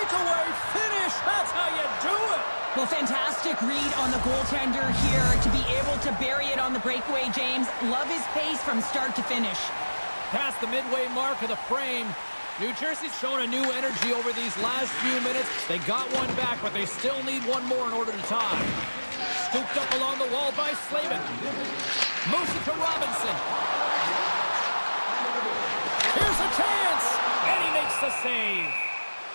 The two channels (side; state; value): both; inverted; correlation -1.00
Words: finish. That's how you do it. Well, fantastic read on the goaltender here to be able to bury it on the breakaway, James. Love his pace from start to finish. Past the midway mark of the frame. New Jersey's shown a new energy over these last few minutes. They got one back, but they still need one more in order to tie. Scooped up along the wall by Slavin. Moves it to Robinson. Here's a chance! And he makes the save.